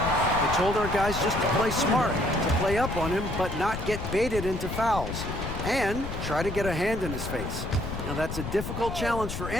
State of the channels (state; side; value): noise; left; rumble, 6 dB below the sound